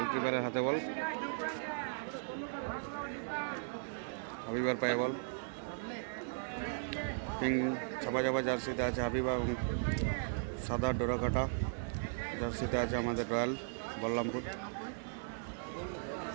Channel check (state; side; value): silent; left; digital silence